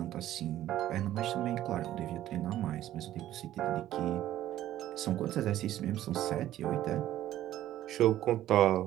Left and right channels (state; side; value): quieter; left; 13.2 dB